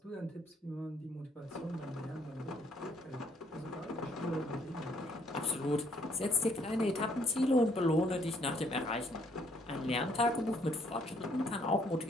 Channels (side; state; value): both; normal; correlation 0.66